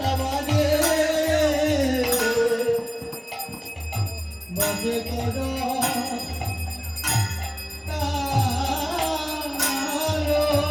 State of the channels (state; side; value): identical; both; correlation 1.00